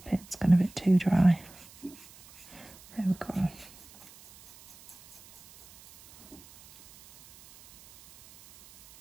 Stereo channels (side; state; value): right; noise; hiss, 23 dB below the sound